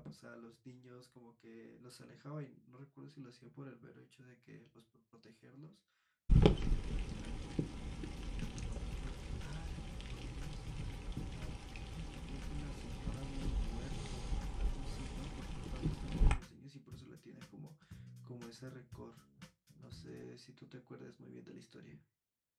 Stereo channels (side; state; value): both; identical; correlation 1.00